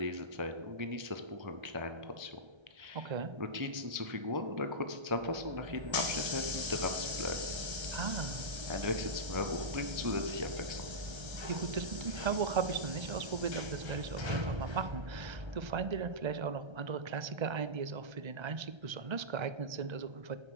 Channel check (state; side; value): late; left; 1.3 ms